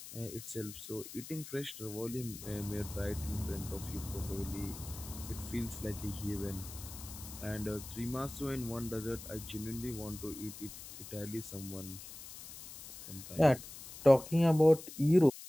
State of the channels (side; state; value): left; noise; hiss, 13 dB below the sound